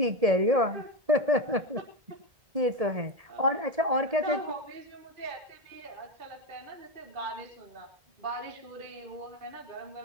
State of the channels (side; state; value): left; late; 1.7 ms